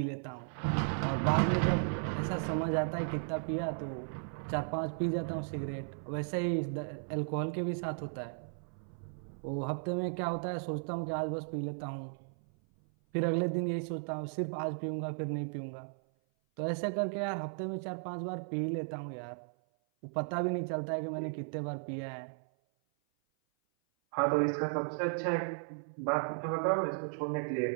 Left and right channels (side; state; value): left; silent; 54 dB below the other